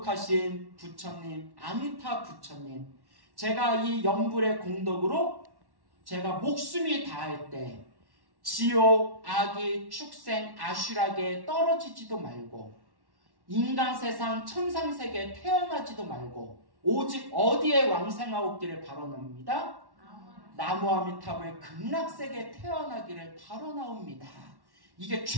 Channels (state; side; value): late; left; 1.1 ms